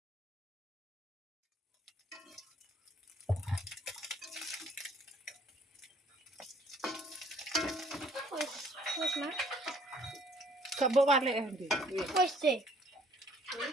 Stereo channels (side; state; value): both; normal; correlation 0.59